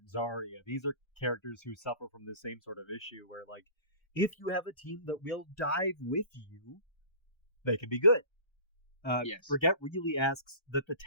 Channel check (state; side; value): late; right; 1.3 ms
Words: Zarya. These are characters who suffer from the same sort of issue where, like, if you have a team that will dive with you, they can be good. Brigitte really asks that the